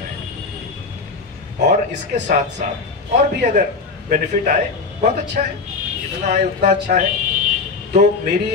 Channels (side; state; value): right; quieter; 4.3 dB